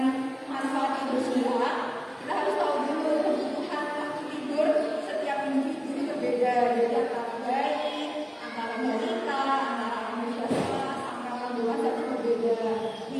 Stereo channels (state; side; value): identical; both; correlation 1.00